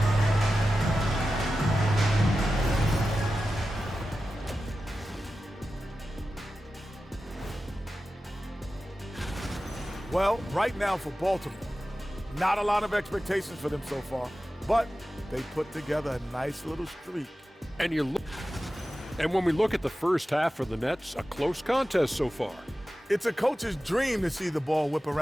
Well, right now for Baltimore, not a lot of expectations for them so far, but they put together a nice little streak. And when we look at the first half for the Nets, a close contest so far. It's a coach's dream to see the ball whip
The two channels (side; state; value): both; normal; correlation 0.94